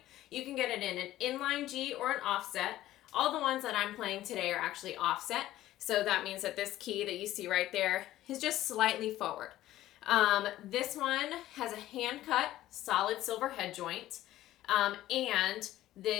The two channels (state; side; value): quieter; right; 14.5 dB